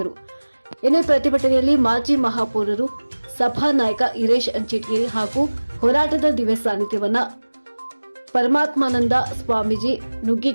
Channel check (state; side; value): inverted; both; correlation -1.00